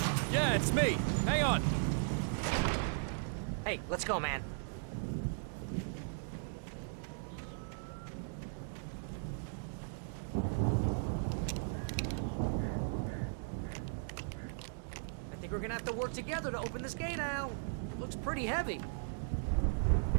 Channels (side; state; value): left; silent; digital silence